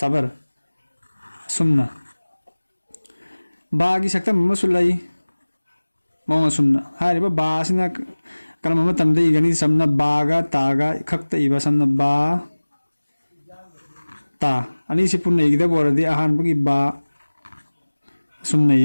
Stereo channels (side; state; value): both; inverted; correlation -1.00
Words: सुमना बागी सक्तम मसु लै मौंग सुमना हाइरिबा बा सिना करम मतमदा इगनी समना बागा तागा खक्ता इबा समना बा ता अनि सि पुन्ना इगदा बोरदी अहान बगी बा सुमना